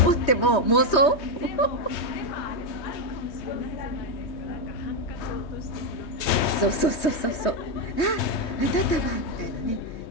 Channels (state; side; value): late; right; 3.2 ms